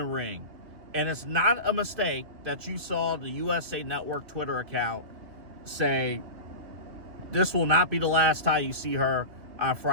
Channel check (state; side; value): late; left; 2.6 ms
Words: ring. And it's not a mistake that you saw the USA Network Twitter account say, this will not be the last time you see her on